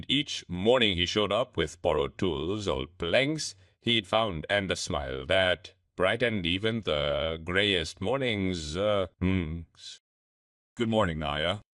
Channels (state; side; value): identical; both; correlation 1.00